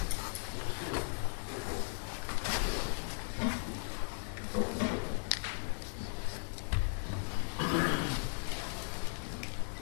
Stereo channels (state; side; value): silent; right; digital silence